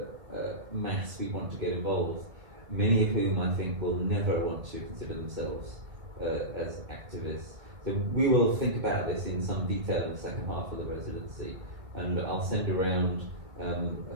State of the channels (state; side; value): late; left; 1.8 ms